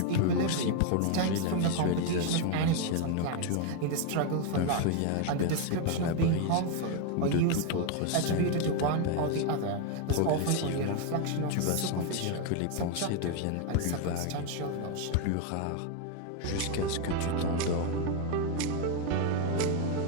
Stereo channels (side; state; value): both; different; correlation 0.01